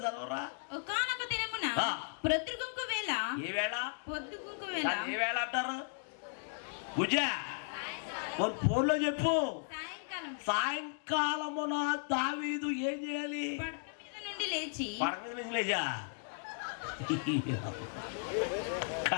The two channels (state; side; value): silent; right; digital silence